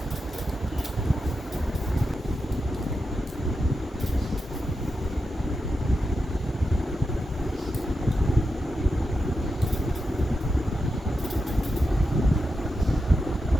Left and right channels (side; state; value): both; normal; correlation 0.88